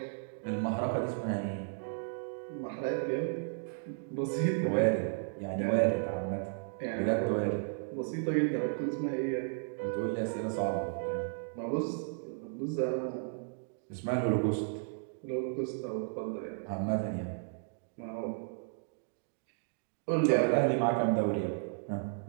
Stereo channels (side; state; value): left; silent; digital silence